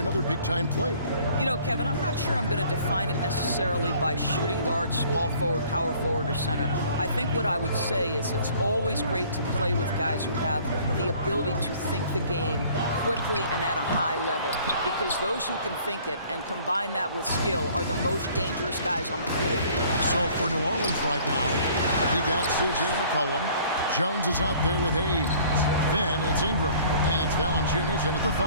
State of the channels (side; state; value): both; inverted; correlation -0.54